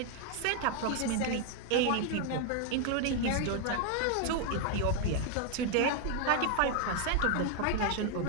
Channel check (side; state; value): both; different; correlation 0.00